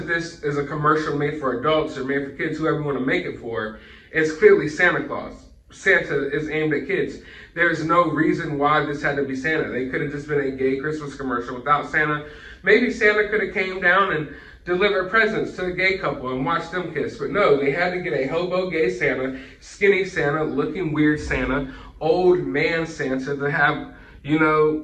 this is a commercial made for adults or made for kids, whoever you want to make it for, it's clearly Santa Claus. Santa is aimed at kids. There's no reason why this had to be Santa. They could have just been a gay Christmas commercial without Santa. Maybe Santa could have came down and delivered presents to the gay couple and watched them kiss. But no, they had to get a hobo gay Santa, skinny Santa, looking weird Santa, old man Santa to have, you know,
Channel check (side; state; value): both; identical; correlation 1.00